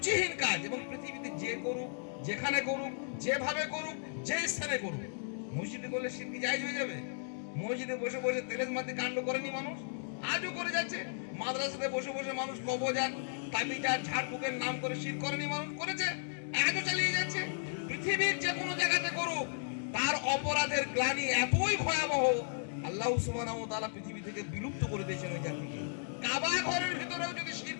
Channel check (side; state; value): right; silent; digital silence